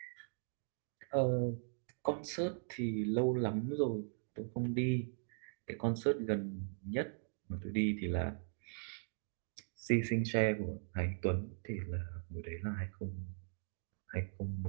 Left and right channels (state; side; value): silent; left; digital silence